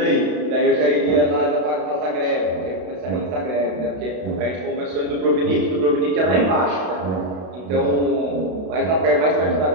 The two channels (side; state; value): left; late; 32 ms